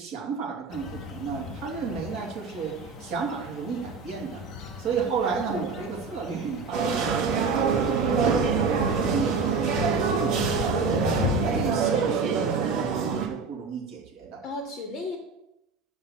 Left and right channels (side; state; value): left; quieter; 4.5 dB